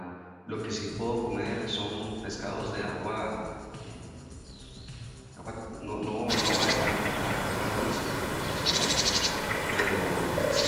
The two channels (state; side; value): identical; both; correlation 1.00